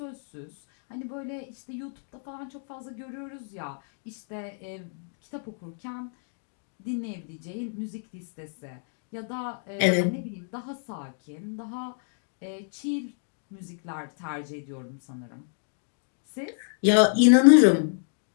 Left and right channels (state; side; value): silent; right; digital silence